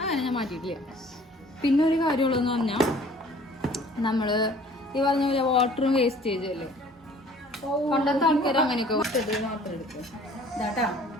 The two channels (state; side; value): normal; both; correlation 0.52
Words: ഞാൻ മാറ്റിയിട്ടില്ല. പിന്നെ ഒരു കാര്യമുള്ളതെന്ന് പറഞ്ഞാൽ നമ്മൾ ഈ പറഞ്ഞ പോലെ വാട്ടറും വേസ്റ്റേജും അല്ലേ, പണ്ടത്തെ ആൾക്കാർ അങ്ങനെയൊക്കെ മാത്രം എടുക്കും. ഇതാട്ടാ